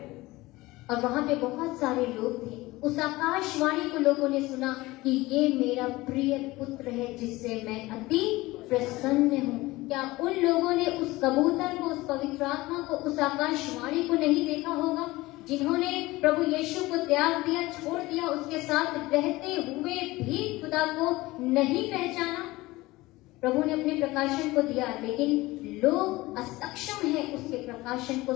और वहां पे बहुत सारे लोग थे। उस आकाशवाणी को लोगों ने सुना कि ये मेरा प्रिय पुत्र है जिससे मैं अति प्रसन्न हूँ। क्या उन लोगों ने उस कबूतर को, उस पवित्र आत्मा को, उस आकाशवाणी को नहीं देखा होगा, जिन्होंने प्रभु यीशु को त्याग दिया, छोड़ दिया, उसके साथ रहते हुए भी खुदा को नहीं पहचाना? प्रभु ने अपने प्रकाशन को दिया, लेकिन लोग असक्षम हैं उसके प्रकाशन को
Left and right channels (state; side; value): quieter; right; 19.8 dB